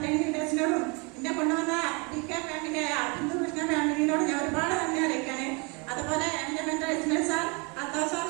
ലീഡേഴ്സിനോടും എന്നെ കൊണ്ടുവന്ന DK ഫാമിലി ബിന്ദു കൃഷ്ണ ഫാമിലിനോട് ഞാൻ ഒരുപാട് നന്ദി അറിയിക്കാണ്. അതുപോലെ എൻ്റെ mentor Ismail sir, Althaf sir,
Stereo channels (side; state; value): left; quieter; 30.9 dB